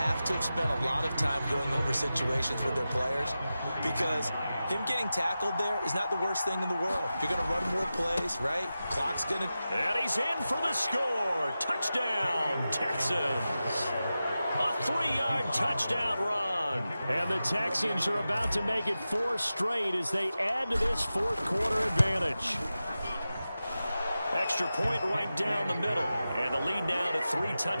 to have spent a lot of time going over situations with their players, because him getting tackled there is not the worst thing in the world. You're going to run more plays, right? Clock's going to... And he's in for the score. Touchdown, Texans. A 3-yard touchdown run. And the Texans are about to make it 4 straight as they add to this fourth-quarter advantage. Extra point right down the middle. And the lead now to 3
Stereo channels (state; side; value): inverted; both; correlation -0.93